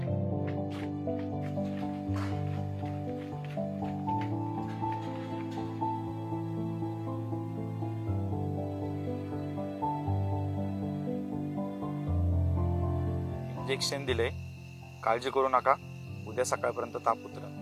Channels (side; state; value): both; identical; correlation 1.00